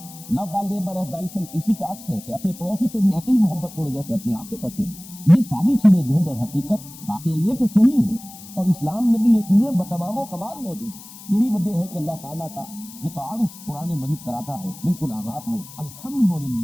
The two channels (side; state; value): left; noise; hiss, 17 dB below the sound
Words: لو thy neighbor as thyself اسی کا عکس ہے کہ اپنے پڑوسی سے بھی ایسے ہی محبت کرو جیسے اپنے آپ سے کرتے ہیں. یہ ساری چیزیں جو ہے در حقیقت واقعہ یہ کہ صحیح ہے اور اسلام میں بھی یہ چیزیں بتمام و کمال موجود ہیں. یہی وجہ ہے کہ اللہ تعالیٰ کا جو تعارف قرآن مجید کراتا ہے بالکل آغاز میں